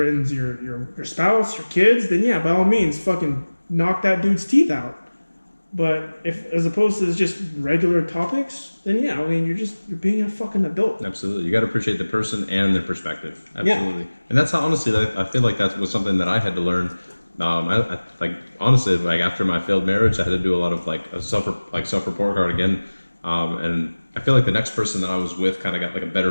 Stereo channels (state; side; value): inverted; both; correlation -1.00